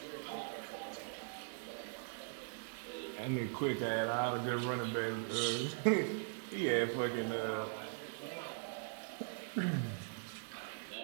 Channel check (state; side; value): silent; left; digital silence